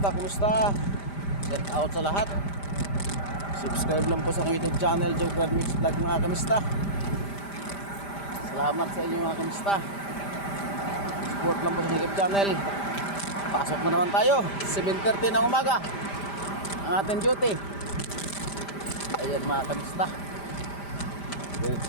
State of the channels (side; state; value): right; late; 5.0 ms